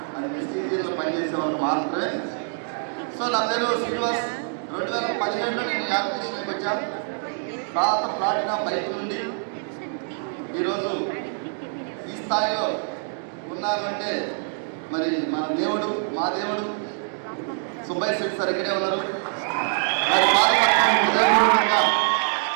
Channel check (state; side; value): silent; left; digital silence